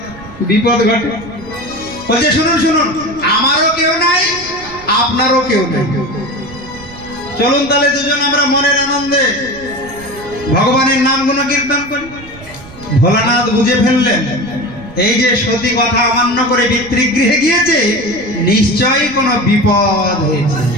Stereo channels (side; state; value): right; noise; rumble, 19 dB below the sound